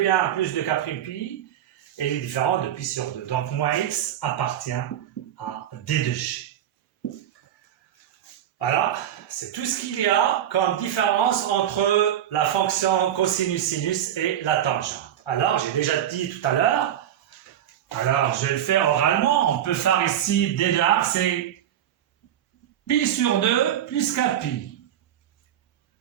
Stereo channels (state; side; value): quieter; left; 10.8 dB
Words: plus de k' pi. Et il est différent de pi sur 2. Donc, moins x appartient à D de G. Voilà, c'est tout ce qu'il y a comme différence entre la fonction cosinus-sinus et la tangente. Alors, j'ai déjà dit tout à l'heure, alors je vais le faire oralement, on peut faire ici d de R, c'est pi sur 2 plus k pi.